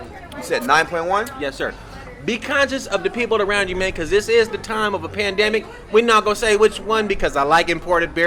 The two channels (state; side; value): identical; both; correlation 1.00